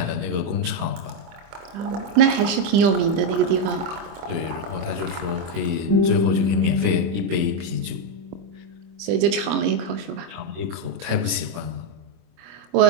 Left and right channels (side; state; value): left; late; 24 ms